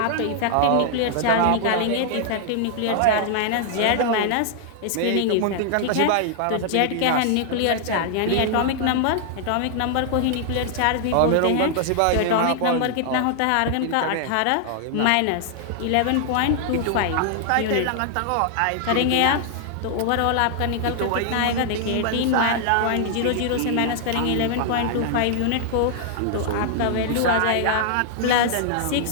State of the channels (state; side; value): different; both; correlation -0.01